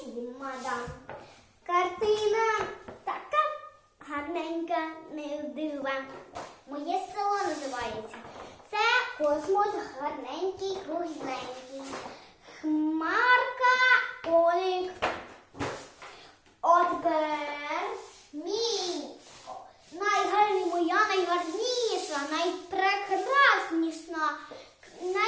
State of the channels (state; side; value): identical; both; correlation 1.00